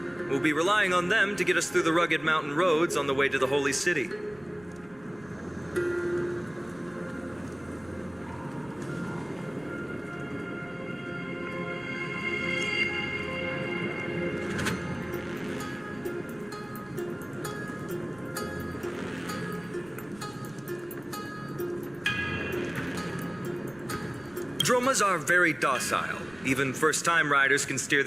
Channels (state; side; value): noise; right; rumble, 24 dB below the sound